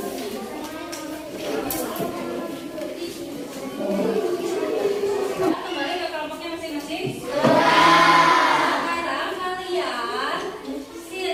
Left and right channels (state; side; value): identical; both; correlation 1.00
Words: Kembali ke kelompoknya masing-masing. Sekarang kalian